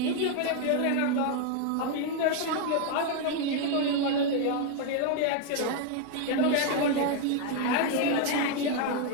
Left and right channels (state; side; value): different; both; correlation 0.01